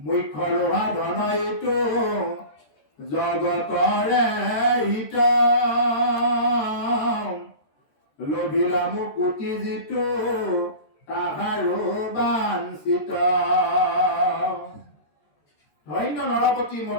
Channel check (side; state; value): right; late; 13 ms